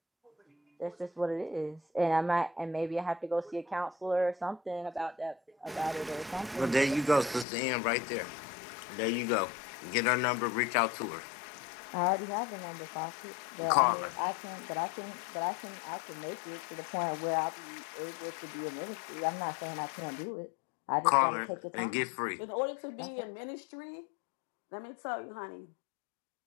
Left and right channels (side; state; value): right; drops out; at 7.5 s